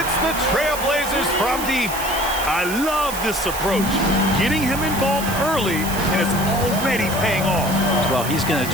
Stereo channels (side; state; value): right; noise; hiss, 9 dB below the sound